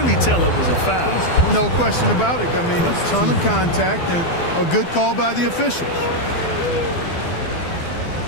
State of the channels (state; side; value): late; right; 12 ms